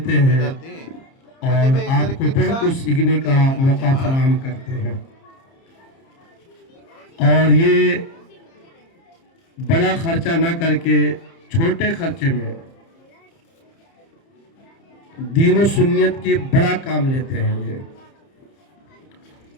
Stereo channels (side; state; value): right; late; 30 ms